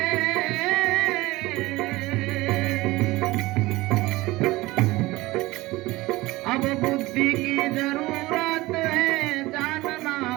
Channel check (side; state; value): left; quieter; 19.8 dB